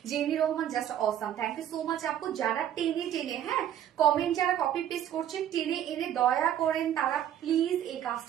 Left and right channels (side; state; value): left; quieter; 10.7 dB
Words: Jemi Rahman, just awesome, thank you so much আপু। যারা টেনে টেনে, হ্যাঁ, কমেন্ট যারা কপি পেস্ট করছেন টেনে এনে দয়া করেন, তারা প্লিজ এই